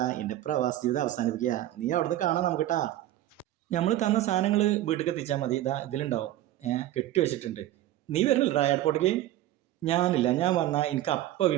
എൻ്റെ പ്രവാസ ജീവിതം അവസാനിപ്പിക്കുക. നീ അവിടുന്ന് കാണാൻ നമുക്കിട്ടാ. നമ്മൾ തന്ന സാധനങ്ങൾ വീട്ടിലേക്ക് എത്തിച്ചാൽ മതി. ഇതാ ഇതിലുണ്ടാവും. കെട്ടി വെച്ചിട്ടുണ്ട്. നീ വരുന്നില്ലടാ എയർപോർട്ടിലേക്ക്? ഞാനില്ല, ഞാൻ വന്നാൽ എനിക്ക് അപ്പം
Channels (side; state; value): left; quieter; 14.0 dB